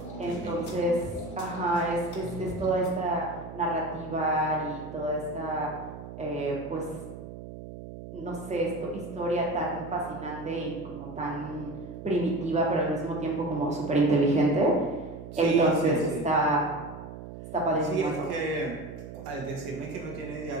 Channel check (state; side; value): noise; right; hum, 12 dB below the sound